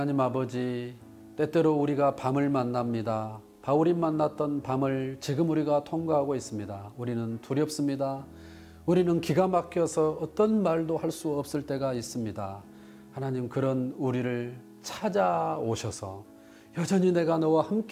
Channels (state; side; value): identical; both; correlation 1.00